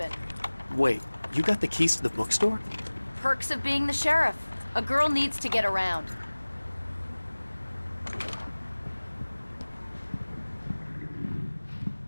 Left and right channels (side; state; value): both; inverted; correlation -1.00